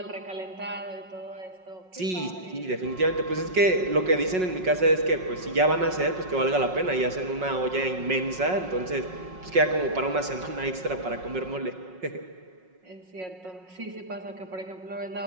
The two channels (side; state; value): left; late; 5.4 ms